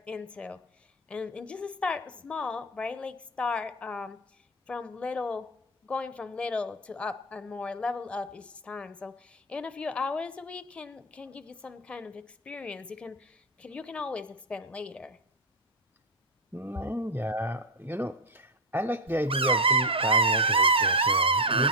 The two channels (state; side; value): normal; both; correlation 0.04